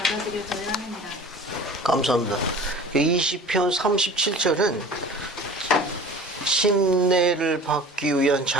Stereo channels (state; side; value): normal; both; correlation 0.42